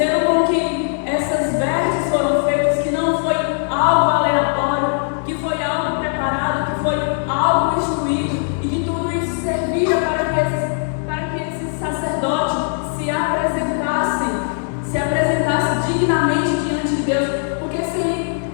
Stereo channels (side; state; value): right; silent; digital silence